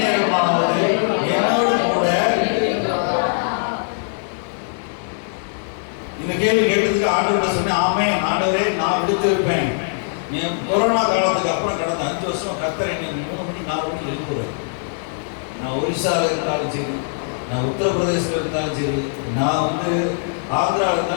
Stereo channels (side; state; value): right; silent; digital silence